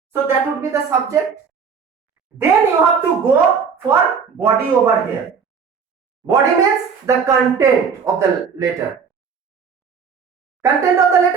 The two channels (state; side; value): quieter; left; 6.2 dB